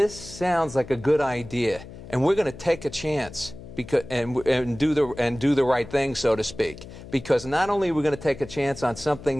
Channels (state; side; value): noise; left; hum, 15 dB below the sound